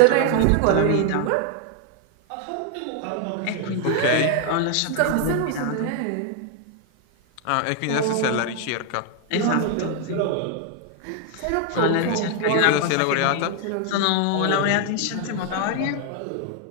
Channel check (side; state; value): both; different; correlation 0.00